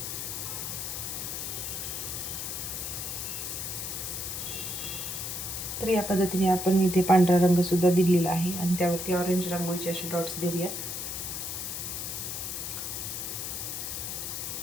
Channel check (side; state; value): left; noise; hiss, 4 dB below the sound